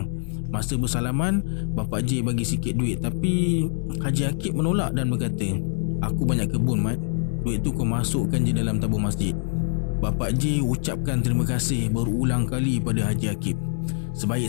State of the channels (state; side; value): silent; right; digital silence